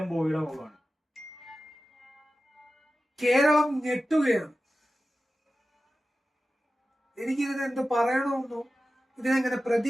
ബോയുടെ മുഖമാണ്. കേരളം ഞെട്ടുകയാണ്. എനിക്കിതിനെ എന്ത് പറയണമെന്നോ, ഇതിനെങ്ങനെ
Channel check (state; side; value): normal; both; correlation 0.94